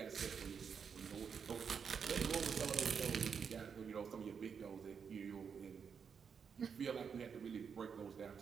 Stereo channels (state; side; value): quieter; left; 6.6 dB